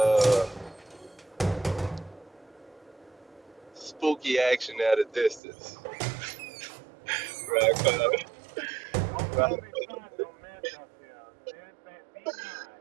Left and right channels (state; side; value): drops out; left; at 5.4 s